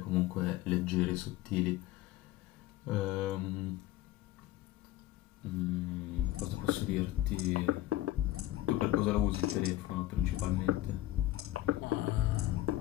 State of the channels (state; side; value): quieter; right; 15.1 dB